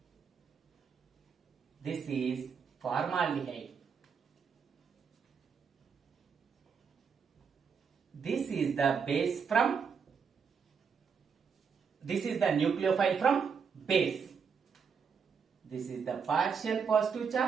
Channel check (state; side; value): quieter; left; 6.2 dB